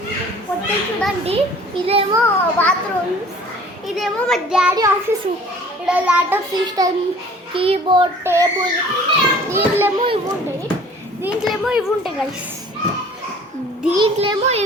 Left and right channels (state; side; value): normal; both; correlation 0.50